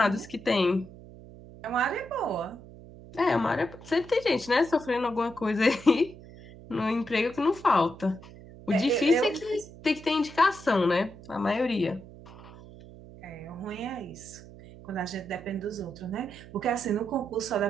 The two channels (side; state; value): right; noise; hum, 18 dB below the sound